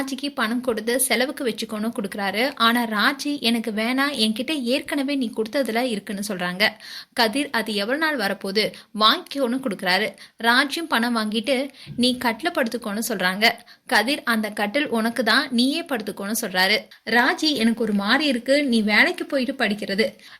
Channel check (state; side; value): identical; both; correlation 1.00